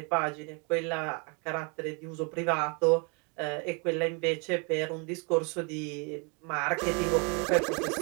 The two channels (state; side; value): quieter; left; 33.6 dB